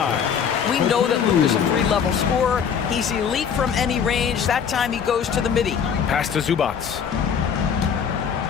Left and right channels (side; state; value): right; quieter; 7.3 dB